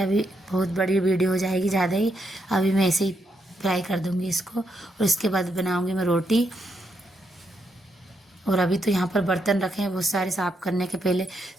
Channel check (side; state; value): both; normal; correlation 0.79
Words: बहुत बड़ी वीडियो हो जाएगी ज़्यादा ही। अभी मैं ऐसे ही फ्राई कर दूँगी इसको, और इसके बाद बनाऊँगी मैं रोटी। और अभी तो यहाँ पर बर्तन रखे हैं बहुत सारे साफ करने के। पहले